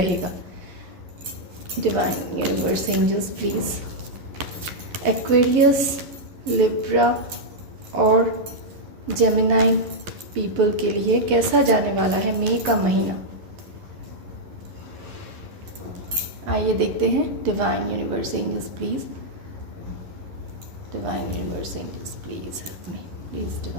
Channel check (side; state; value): left; late; 11 ms